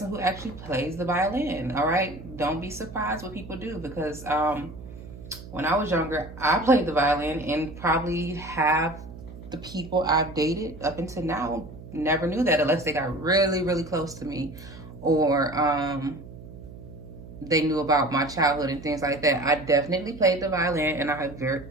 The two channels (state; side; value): noise; right; hum, 15 dB below the sound